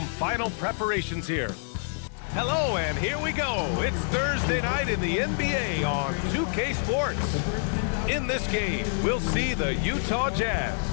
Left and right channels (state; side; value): silent; right; digital silence